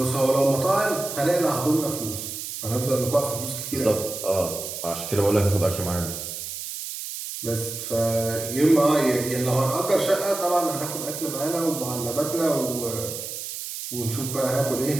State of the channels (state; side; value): noise; right; hiss, 7 dB below the sound